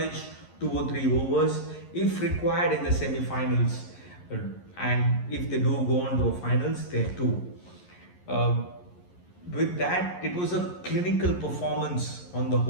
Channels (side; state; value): right; late; 11 ms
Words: 2 or 3 overs if required in the semi-finals, and if they do go on to the finals, there too. With that, it was a clinical performance on the